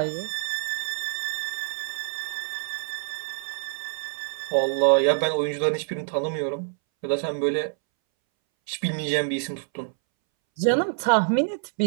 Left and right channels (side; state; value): left; silent; 61 dB below the other